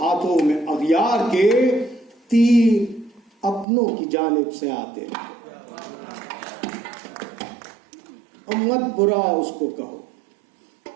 ہاتھوں میں اغیار کے، تیر اپنوں کی جانب سے آتے رہے. مت برا اس کو کہو،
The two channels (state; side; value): drops out; left; at 3.7 s